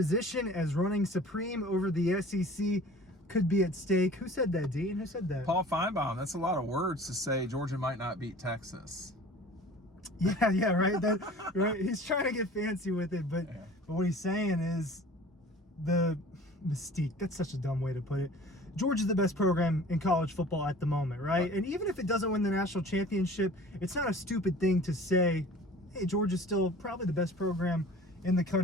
as running supreme over the SEC could be at stake. Who said that, Dean? Who said that? Paul Finebaum. That's a lot of words to say Georgia might not beat Texas. Yeah, right. Right. He's trying to get fancy with it, but what he's saying is the mystique. That's such a dumb way to put it. Georgia's the best program in college football at the moment, right? And even if it doesn't win the national championship, it's not a stupid thing to say, hey, Georgia's still probably the best program in the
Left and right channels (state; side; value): normal; both; correlation 0.45